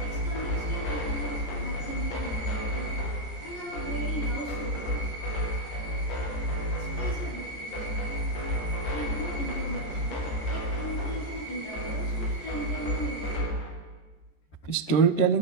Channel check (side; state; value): right; late; 13 ms